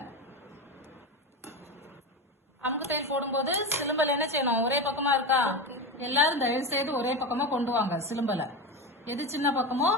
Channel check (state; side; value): normal; both; correlation 0.20